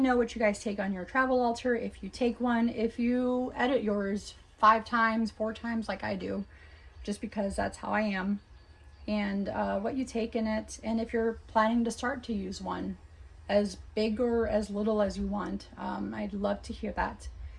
know what you guys take on your travel altar, if you take one, if you edit yours 5 times, 4 times like I do, just because that's how I am, and what you take in it, and if you're planning to start to use one, as big or as little as you want. I'd love to hear that.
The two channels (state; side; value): identical; both; correlation 1.00